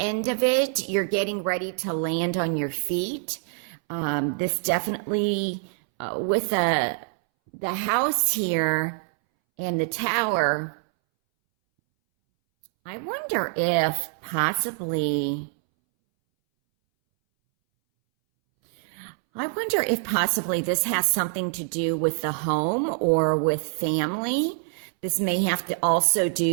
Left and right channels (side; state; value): left; silent; 62 dB below the other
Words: of it, you're getting ready to land on your feet. This definitely, with the house here and the Tower, I wonder if possibly this has something to do with the home or with family. This may have to also